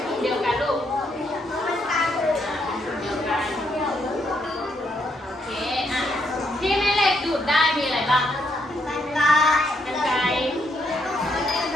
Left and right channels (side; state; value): both; normal; correlation 0.75